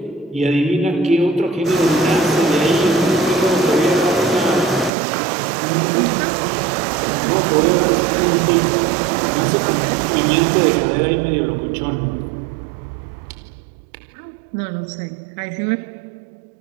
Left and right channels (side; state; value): left; drops out; at 4.9 s